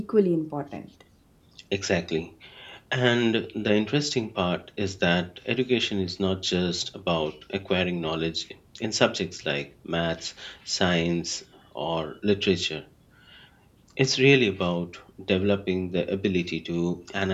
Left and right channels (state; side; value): identical; both; correlation 1.00